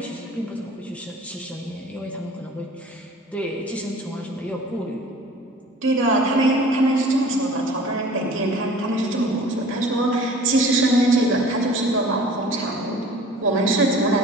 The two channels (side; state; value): both; normal; correlation 0.46